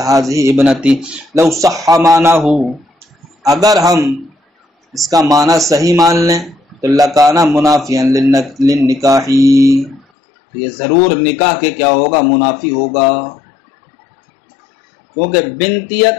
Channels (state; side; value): drops out; right; at 10.1 s